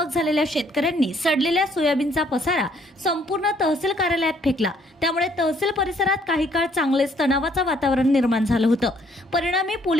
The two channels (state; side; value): normal; both; correlation 0.65